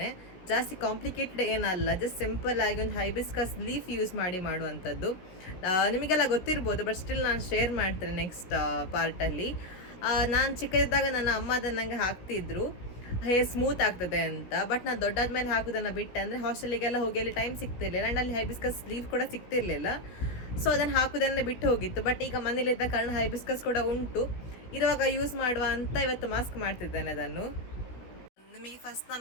ಜಾಸ್ತಿ ಕಾಂಪ್ಲಿಕೇಟೆಡ್ ಏನಲ್ಲ, ಜಸ್ಟ್ ಸಿಂಪಲ್ ಆಗಿ ಒಂದು ಹೈಬಿಸ್ಕಸ್ ಲೀಫ್ ಯೂಸ್ ಮಾಡಿ ಮಾಡುವಂಥದ್ದು. ನಿಮಗೆಲ್ಲ ಗೊತ್ತಿರ್ಬೋದು, ಬಟ್ ಸ್ಟಿಲ್ ನಾನು ಶೇರ್ ಮಾಡ್ತೇನೆ ನೆಕ್ಸ್ಟ್ ಪಾರ್ಟಲ್ಲಿ. ನಾನು ಚಿಕ್ಕದಿದ್ದಾಗ ನನ್ನ ಅಮ್ಮ ಅದನ್ನು ನನಗೆ ಹಾಕ್ತಿದ್ರು, ಹೇರ್ ಸ್ಮೂತ್ ಆಗ್ತದೆ ಅಂತ. ಬಟ್ ನಾನು ದೊಡ್ಡಾದ್ಮೇಲೆ ಹಾಕೋದನ್ನು ಬಿಟ್ಟೆ, ಅಂದರೆ ಹಾಸ್ಟೆಲಿಗೆಲ್ಲ ಹೋಗಿ ಅಲ್ಲಿ ಟೈಮ್ ಸಿಗ್ತಿರ್ಲಿಲ್ಲ, ಆ್ಯಂಡ್ ಅಲ್ಲಿ ಹೈಬಿಸ್ಕಸ್ ಲೀಫ್ ಕೂಡ ಸಿಗ್ತಿರ್ಲಿಲ್ಲ. ಸೊ ಅದನ್ನು ಹಾಕೋದನ್ನೇ ಬಿಟ್ಟು ಹೋಗಿತ್ತು. ಬಟ್ ಈಗ ಮನೇಲಿದ್ದ ಕಾರಣ ಹೈಬಿಸ್ಕಸ್ ಕೂಡ ಉಂಟು, ಇರುವಾಗ ಯೂಸ್ ಮಾಡುವ ಅಂತ ಇವತ್ತು ಮಾಸ್ಕ್ ಮಾಡ್ತಿದ್ದೇನೆ ಅದನ್ನು. ನಿಮಗೆ ಫಸ್ಟ್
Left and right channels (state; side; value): late; right; 16 ms